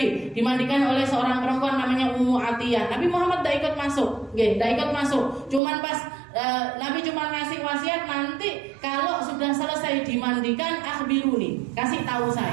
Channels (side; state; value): left; drops out; at 5.6 s